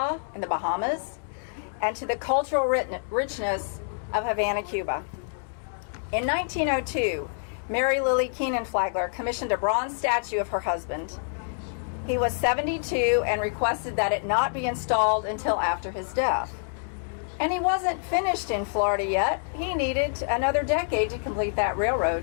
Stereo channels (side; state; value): right; silent; digital silence